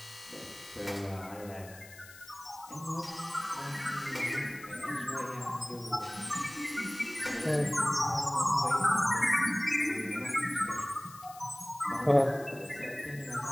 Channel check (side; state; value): left; noise; hiss, 19 dB below the sound